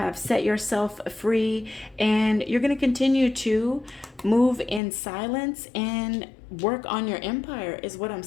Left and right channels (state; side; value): drops out; right; at 4.8 s